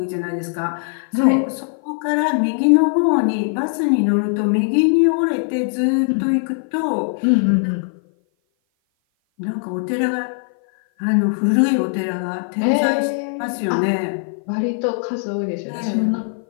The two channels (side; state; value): right; silent; 56 dB below the other